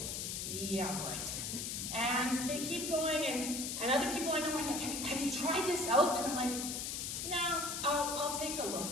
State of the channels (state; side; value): noise; left; hiss, 3 dB below the sound